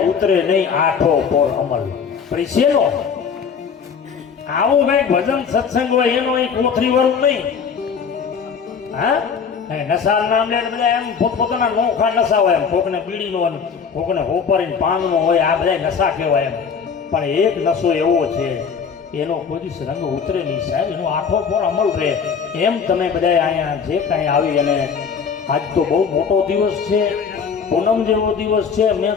ઉતરે નહીં આઠો પોર અમલ. પરિસેનો આવું કઈ ભજન સત્સંગ હોય એનો એક કોથરી વાળું નહીં. નશા નામ લે બધા એમ પોતપોતાના નોખા નશા હોય એમ કોકને બીડીનો કોકને હોપરીને પાનનો હોય આ બધા નશા કહેવાય એમ પણ એક નશો એવો છે એનો કોઈ રંગ ઉતરે નહીં સાહેબ એનો આઠો પર અમલ રહે. એમ તમે બધા અહીંયા જે કાંઈ આવી અને આજ તો બહુ મોટો દિવસ છે પૂનમ જેવો દિવસ છે. મેં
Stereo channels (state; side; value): quieter; right; 6.4 dB